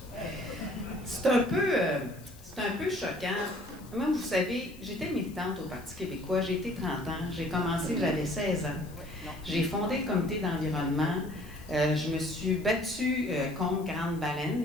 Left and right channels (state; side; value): noise; left; hiss, 22 dB below the sound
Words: C'est un peu choquant. Moi, vous savez, j'étais militante au Parti québécois, j'ai été 30 ans, j'ai commencé, j'avais 16 ans. J'ai fondé le comité d'environnement. Je me suis battue contre Grande Baleine